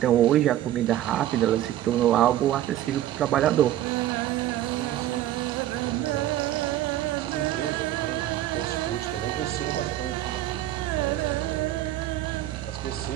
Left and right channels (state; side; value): quieter; left; 13.3 dB